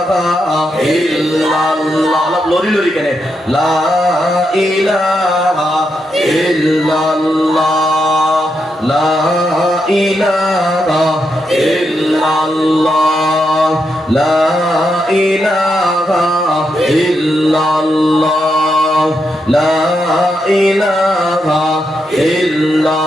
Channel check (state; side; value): normal; both; correlation 0.83